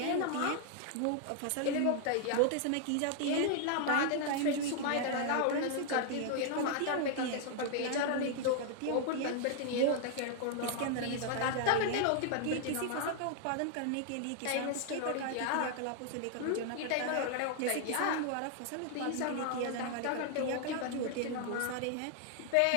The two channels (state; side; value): different; both; correlation 0.00